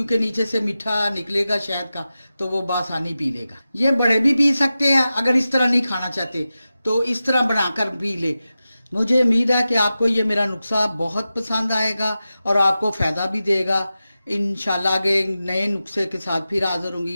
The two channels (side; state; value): both; inverted; correlation -0.93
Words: नीचे से मीठा निकलेगा शहद का, तो वो बआसानी पी लेगा। ये बड़े भी पी सकते हैं, अगर इस तरह नहीं खाना चाहते तो इस तरह बनाकर पी ले। मुझे उम्मीद है कि आपको ये मेरा नुस्खा बहुत पसंद आएगा और आपको फ़ायदा भी देगा। इंशाल्लाह आगे नए नुस्खे के साथ फिर हाज़िर